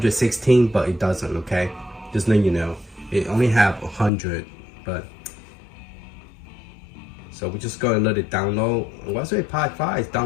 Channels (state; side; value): drops out; right; at 4.1 s